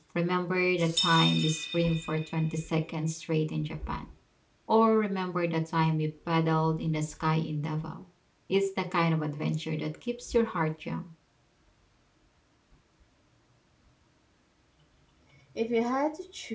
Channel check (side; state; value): both; identical; correlation 1.00